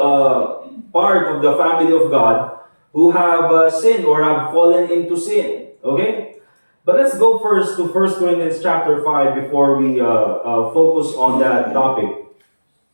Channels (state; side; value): inverted; both; correlation -1.00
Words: part of the family of God, who have sinned or have fallen into sin. Okay? But let's go first to 1 Corinthians chapter 5 before we focus on that topic.